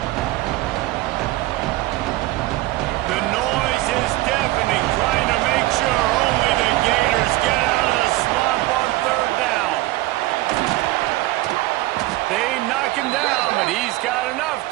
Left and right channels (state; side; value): quieter; left; 18.4 dB